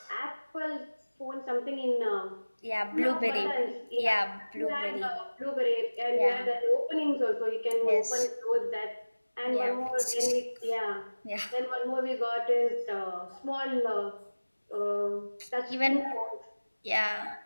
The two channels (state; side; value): inverted; both; correlation -1.00